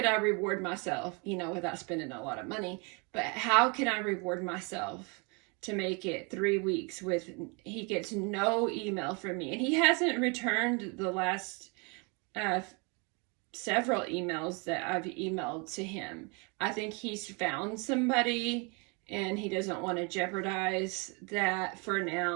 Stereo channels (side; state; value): left; quieter; 32.1 dB